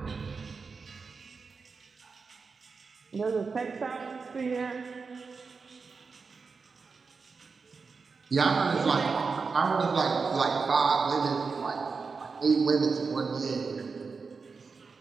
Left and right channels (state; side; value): quieter; left; 4.8 dB